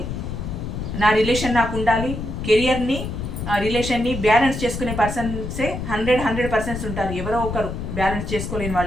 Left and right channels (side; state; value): left; noise; rumble, 5 dB below the sound